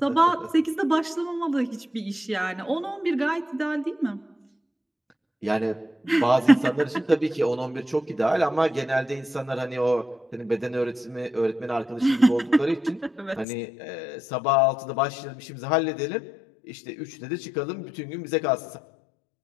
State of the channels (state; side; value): drops out; right; at 13.5 s